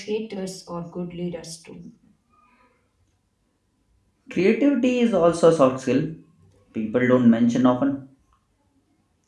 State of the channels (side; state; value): both; identical; correlation 1.00